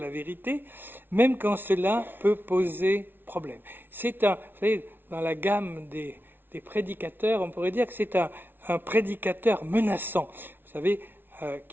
la vérité, même quand cela peut poser problème. C'est vous savez, dans la gamme des prédicateurs, on pourrait dire que c'est un prédicateur menaçant. Vous savez,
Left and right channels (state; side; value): late; left; 0.10 ms